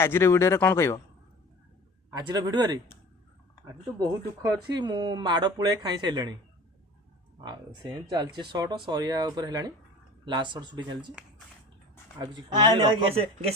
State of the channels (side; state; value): both; normal; correlation 0.41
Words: भिडियो कौन कह आज भिडियो आज तो बहुत दुख अच्छी मु माड़ पुଳେ खाई सारे से चलती सर्ट सरिया लास्ट सर्ट सुटी चलती